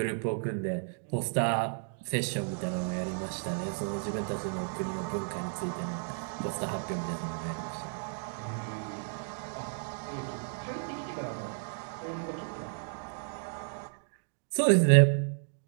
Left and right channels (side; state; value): left; silent; 56 dB below the other